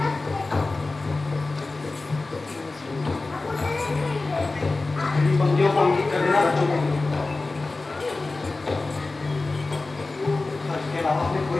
इन पंक्तियों को अंकित कर देना बच्चों को। इसके अलावा अपने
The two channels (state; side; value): quieter; right; 3.4 dB